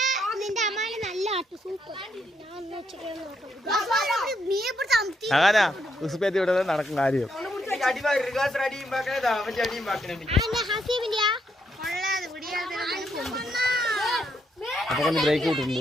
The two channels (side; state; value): both; normal; correlation 0.77